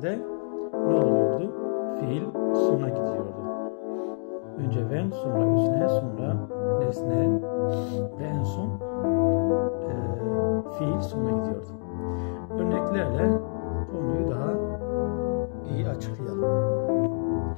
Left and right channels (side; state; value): right; silent; 57 dB below the other